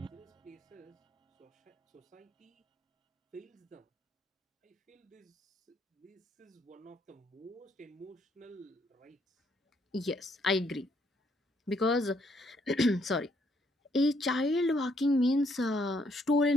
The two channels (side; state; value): both; normal; correlation 0.71